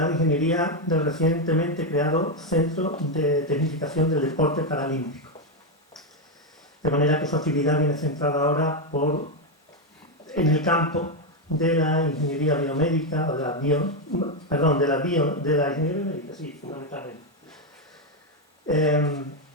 de ingeniería del recientemente creado Centro de Tecnificación del Deporte Paralímpico. De manera que su actividad viene centrada ahora en el campo de la ingeniería biomédica, o de la ingeniería biomédica, sí, fundamentalmente.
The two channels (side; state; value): both; normal; correlation 0.05